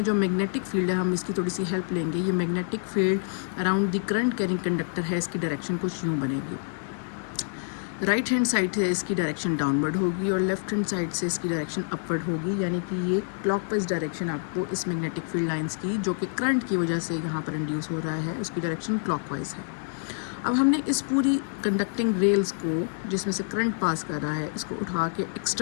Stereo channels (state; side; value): silent; right; digital silence